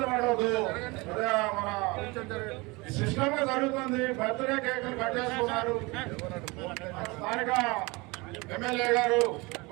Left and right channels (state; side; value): quieter; left; 25.0 dB